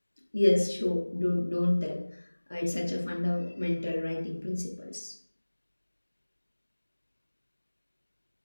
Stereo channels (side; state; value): both; inverted; correlation -1.00